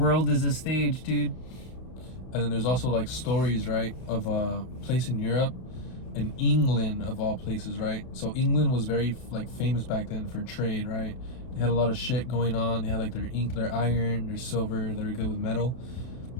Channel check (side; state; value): right; late; 32 ms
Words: is a stage, dude. And then there's also like stories, right, of a place in Europe, in England of all places, right? So England was very like famous back then for trade, right? They had a lot of shit going on. They had like their iron, their silver. They were good with metal.